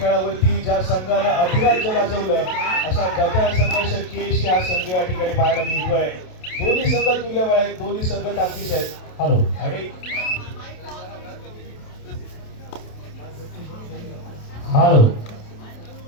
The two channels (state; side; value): late; right; 28 ms